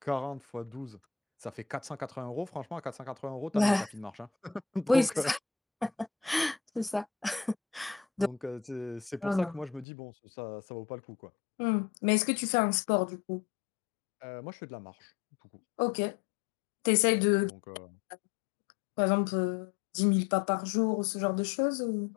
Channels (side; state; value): right; drops out; at 9.9 s